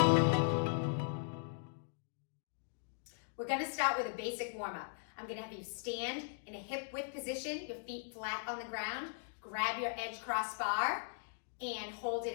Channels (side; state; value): right; silent; digital silence